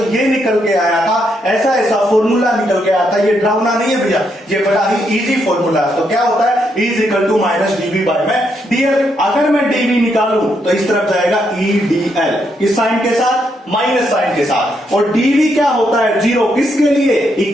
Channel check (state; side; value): normal; both; correlation 0.78